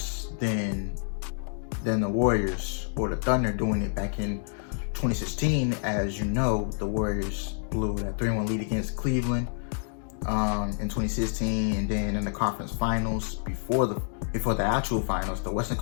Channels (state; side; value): silent; right; digital silence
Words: than the Warriors or the Thunder doing it back in 2016. As you know, the Warriors blew that 3-1 lead against Cleveland in 2016, and then in the conference finals before the actual finals, the Western